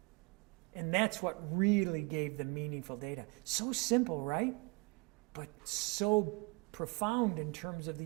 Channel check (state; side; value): quieter; left; 28.8 dB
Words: And that's what really gave the meaningful data. So simple, right? But so profound in terms of